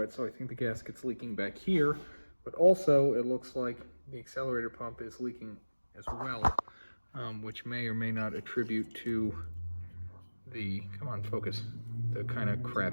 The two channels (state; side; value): inverted; both; correlation -1.00